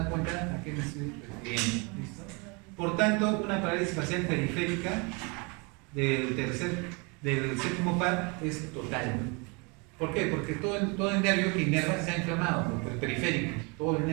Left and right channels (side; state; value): left; quieter; 30.0 dB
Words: cuenta a qué me estoy refiriendo. ¿Listo? Por tanto, una parálisis facial periférica del séptimo par es total. ¿Por qué? Porque todo el nervio que inerva se ha inflamado, el periférico, todo el